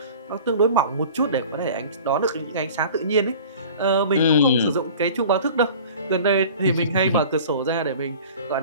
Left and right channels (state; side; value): inverted; both; correlation -0.43